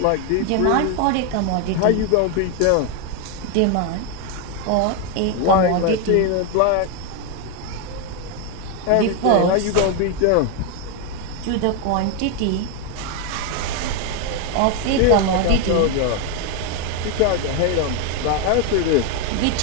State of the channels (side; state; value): both; different; correlation 0.01